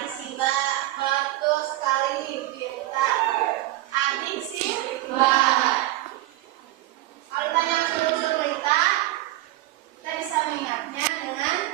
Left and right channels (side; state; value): left; quieter; 16.7 dB